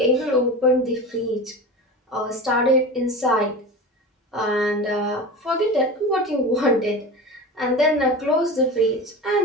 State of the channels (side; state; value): both; normal; correlation 0.29